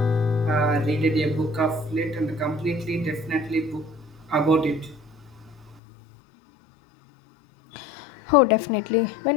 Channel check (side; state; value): right; drops out; at 5.8 s